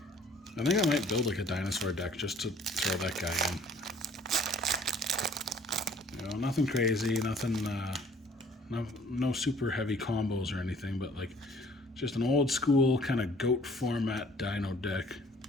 I think I might build like a dinosaur deck just to throw that guy in. You know, nothing crazy, nothing, no super heavy combos or anything, but like just an old school kind of goat format dino deck.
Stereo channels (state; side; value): normal; both; correlation 0.55